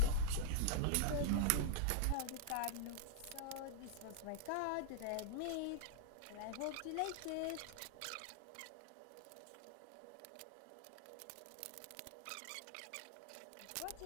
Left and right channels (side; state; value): both; different; correlation -0.01